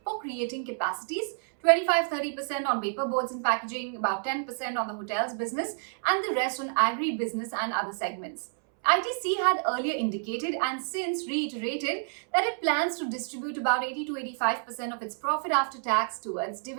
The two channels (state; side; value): silent; left; 59 dB below the other